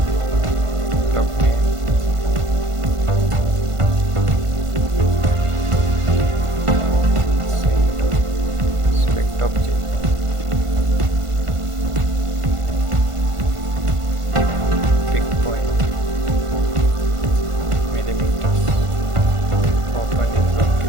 name. Select object. Pick point. Millimeters. Open in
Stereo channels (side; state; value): left; late; 1.5 ms